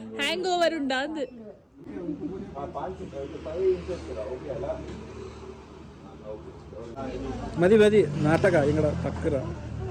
ಹ್ಯಾಂಗ್ ಓವರ್ ಉಂಡ ಅದು. ಮದಿ ಮದಿ ನಾಟಕ ಇಂಗಡ ಪಕ್ಕರ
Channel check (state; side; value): identical; both; correlation 1.00